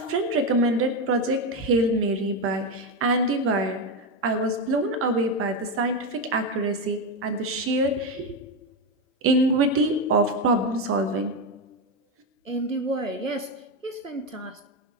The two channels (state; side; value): normal; both; correlation 0.11